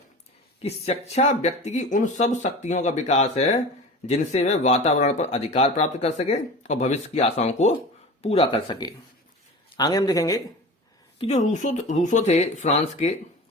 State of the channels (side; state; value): both; normal; correlation 0.34